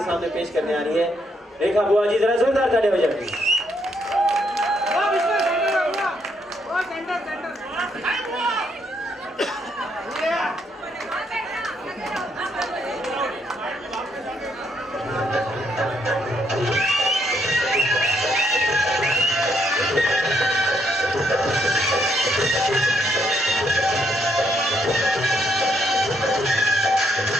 सामने पेश करने आ रही है रेखा बुआ जी। जरा जोरदार ताली हो जाए।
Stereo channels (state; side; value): normal; both; correlation 0.74